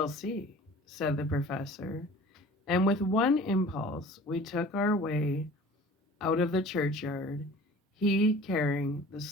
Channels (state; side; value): normal; both; correlation 0.45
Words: see," said the professor. And with one impulse, we took our way out of the churchyard, he carrying the